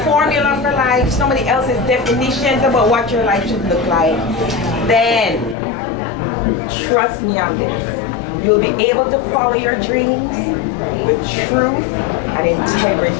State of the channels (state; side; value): drops out; right; at 5.6 s